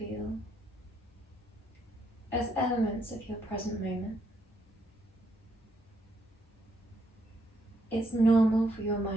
as elements of your present moment. It's normal for your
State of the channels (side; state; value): both; normal; correlation 0.75